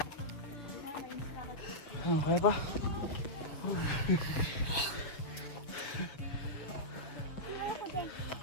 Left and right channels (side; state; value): right; late; 7.1 ms